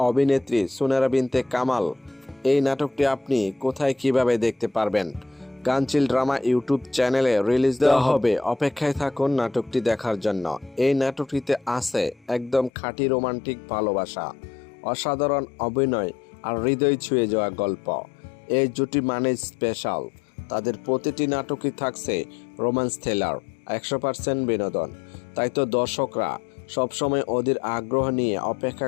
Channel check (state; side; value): drops out; right; at 12.7 s